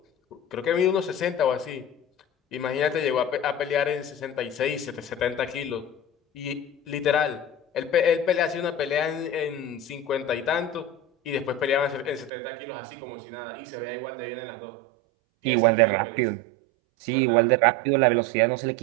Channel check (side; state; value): left; drops out; at 12.3 s